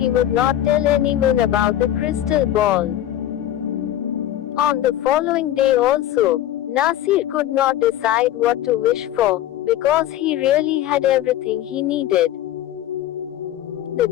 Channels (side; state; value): right; quieter; 12.5 dB